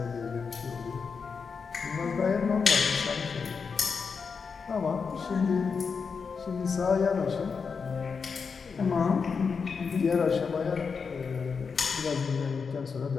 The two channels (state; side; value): quieter; right; 5.5 dB